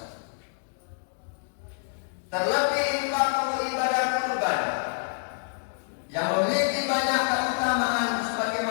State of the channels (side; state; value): right; silent; digital silence